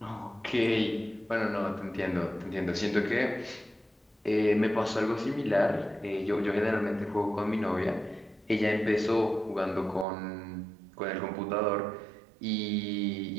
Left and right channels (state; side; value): drops out; left; at 10.1 s